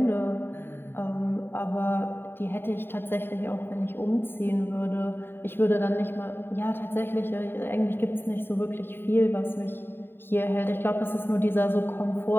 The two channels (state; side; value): late; right; 0.10 ms